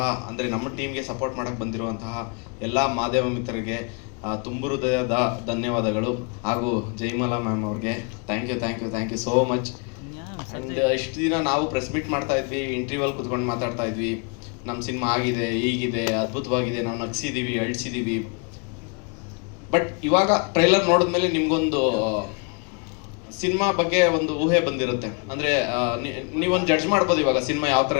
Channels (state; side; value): quieter; right; 35.3 dB